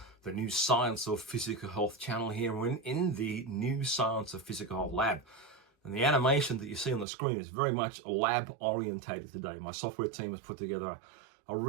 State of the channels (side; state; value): left; drops out; at 7.1 s